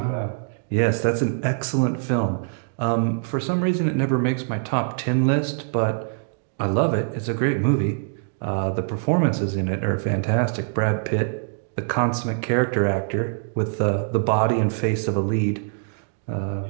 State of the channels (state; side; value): silent; left; digital silence